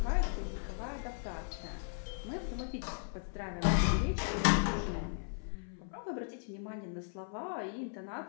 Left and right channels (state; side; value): silent; right; 53 dB below the other